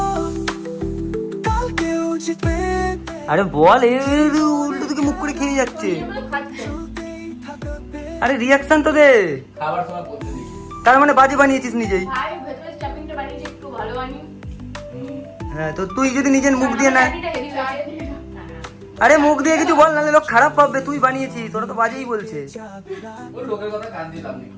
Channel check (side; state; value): both; identical; correlation 1.00